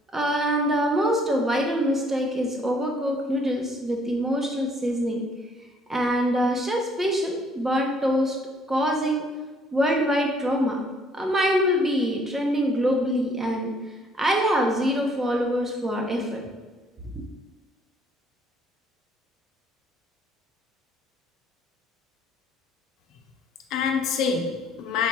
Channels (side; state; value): both; normal; correlation 0.62